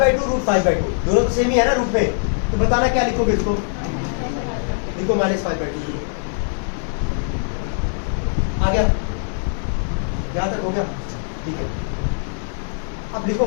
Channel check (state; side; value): silent; right; 65 dB below the other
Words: √5/2 दोनों तो सेम ही है ना रूट में, तो बताना क्या लिखोगे इसको? लिखो -5/2। आ गया? यहाँ तक हो गया? ठीक है, अब लिखो